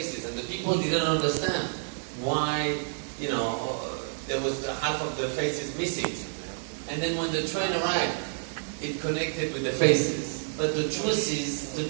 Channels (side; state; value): left; silent; 59 dB below the other